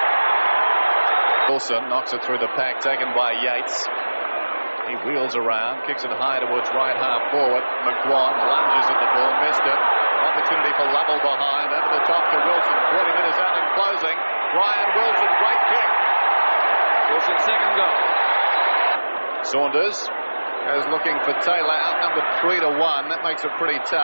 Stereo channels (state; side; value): inverted; both; correlation -1.00